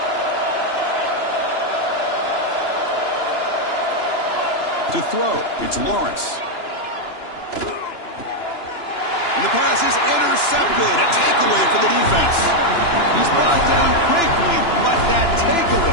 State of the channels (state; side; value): late; right; 2.9 ms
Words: To throw, it's Lawrence. And the pass is intercepted. A takeaway for the defense. He's brought down quickly, but that